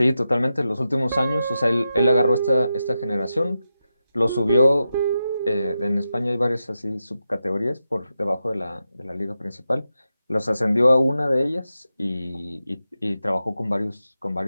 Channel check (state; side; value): inverted; both; correlation -0.89